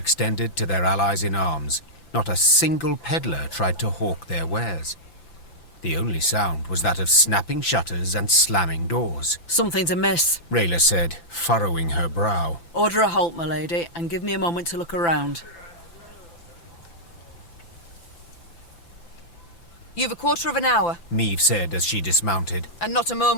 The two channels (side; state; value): right; late; 5.9 ms